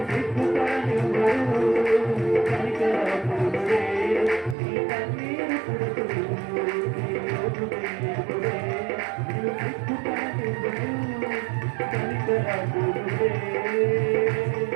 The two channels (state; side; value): drops out; left; at 4.5 s